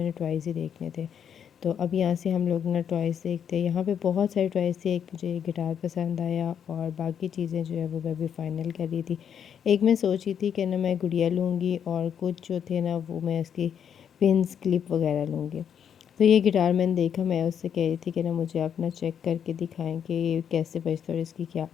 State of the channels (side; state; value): right; quieter; 8.3 dB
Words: टॉयज़ ही देखने थे। तो अब यहाँ से हम लोग ना टॉयज़ देखते हैं। यहाँ पे बहुत सारे टॉयज़ थे। एक मुझे गिटार पसंद आया और बाकी चीज़ें जो है वो मैं भी फ़ाइनल कर रही थी। एक मैं सोची थी कि ना मैं गुड़िया लूँगी और कुछ जो थे ना वो मैं उसकी पिन्स क्लिप वगैरह लूँगी। तो ये गिटार मैंने देखा, मैं उससे कह रही थी कि ना मुझे अपना चेक करके दिखाएं कि ये कैसे बजता है और इसकी क्या